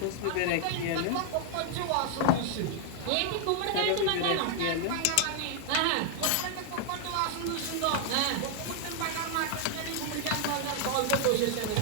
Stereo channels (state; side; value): different; both; correlation 0.00